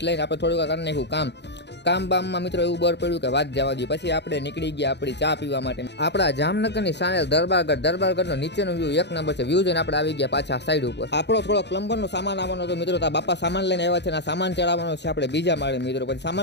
લઈને આપણે થોડુંક કરી નાખ્યું કામ બામમાં મિત્રો એવું બર પડ્યું કે વાત જવા દઈએ। પછી આપણે નીકળી ગયા આપણી ચા પીવા માટે આપણા જામનગરની સાણેલ દરબારગઢનો નીચેનો વ્યૂ એક નંબર છે। વ્યૂ જોઈને આપણે આવી ગયા પાછા સાઈડ ઉપર। આપણો થોડો પ્લમ્બરનો સામાન આવવાનો હતો મિત્રો। તો બાપા સામાન લઈને આવ્યા છે ને સામાન ચડાવવાનો છે આપણે બીજા માળે મિત્રો। પછી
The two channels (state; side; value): late; right; 0.50 ms